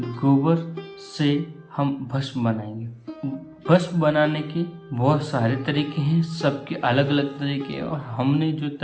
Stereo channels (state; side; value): identical; both; correlation 1.00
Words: गोबर से हम भस्म बनाएंगे। भस्म बनाने के बहुत सारे तरीके हैं, सबके अलग अलग तरीके हैं और हमने जो